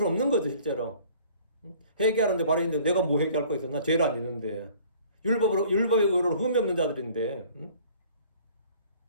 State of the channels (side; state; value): both; inverted; correlation -0.52